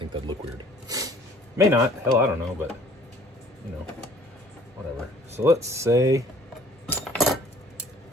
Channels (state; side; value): normal; both; correlation 0.54